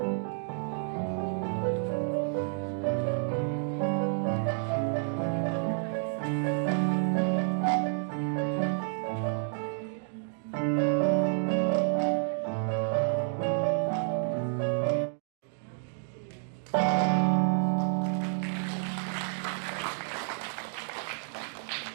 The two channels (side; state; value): left; silent; 58 dB below the other